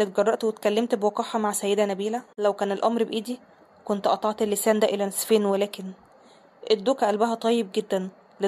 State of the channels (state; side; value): identical; both; correlation 1.00